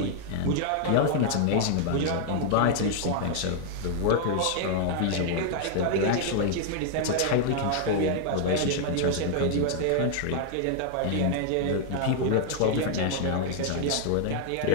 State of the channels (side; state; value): both; different; correlation -0.01